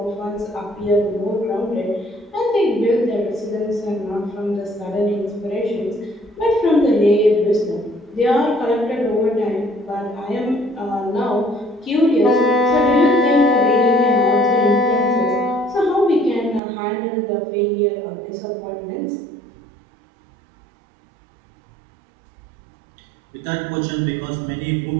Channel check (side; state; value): left; drops out; at 16.6 s